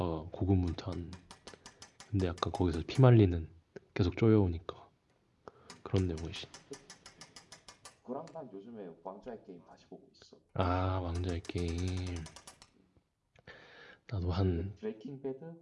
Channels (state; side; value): identical; both; correlation 1.00